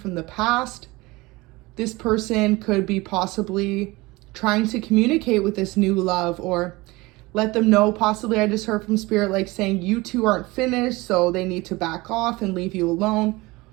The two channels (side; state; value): left; quieter; 22.0 dB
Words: the past. This person could be possibly trying to communicate with this new love, or let them know, possibly I just heard from spirit like saying you two aren't finished, so they need to back off and leave you alone,